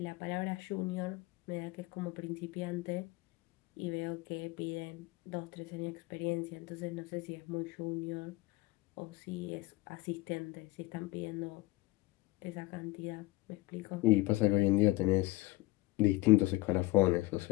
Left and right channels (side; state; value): right; quieter; 20.2 dB